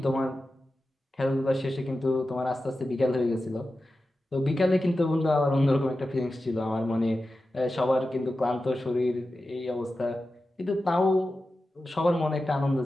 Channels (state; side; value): normal; both; correlation 0.93